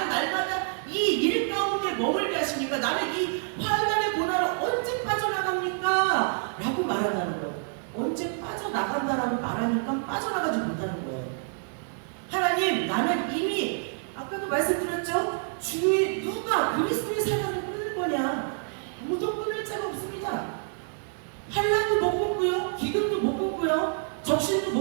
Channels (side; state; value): left; silent; 60 dB below the other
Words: 날마다 이 일 가운데 머물게 하십니까? 나는 이 환난의 고난을 언제 빠져나갑니까? 라고 말한다는 거예요. 언제 빠져나간다라고 말하니까 빠져나가지 못하는 거예요. 하나님, 나는 이미 아까도 말씀드렸죠? 주의 누가 그리스도의 사랑을 끊을 거냐? 아무도 끊을 자가 없습니다. 환난도 못 끊고요, 기근도 못 끊고요, 적신도